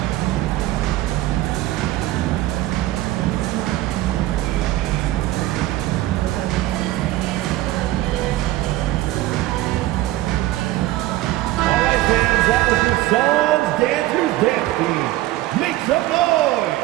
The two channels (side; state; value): left; quieter; 16.2 dB